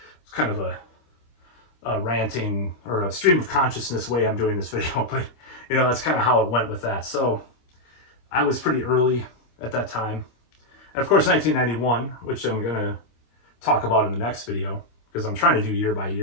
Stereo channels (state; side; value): late; right; 26 ms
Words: it's kind of a ranting or a stream of consciousness way I'm doing this video, but that's kind of how it went with that. So I was pretty early at that time. And of course, 1991, which I'm going to talk about in the next video, because I'm trying to do year by